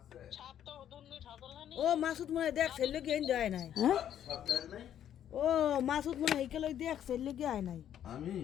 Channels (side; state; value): right; quieter; 10.3 dB